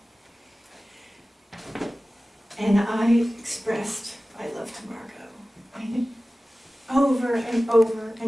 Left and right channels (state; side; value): normal; both; correlation 0.96